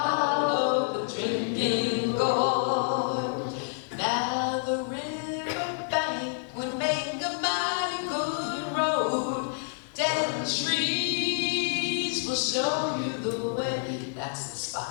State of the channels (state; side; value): silent; right; digital silence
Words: the drinking gourd. Now the river bank would make a mighty good road. Dead trees will show you the way. That's the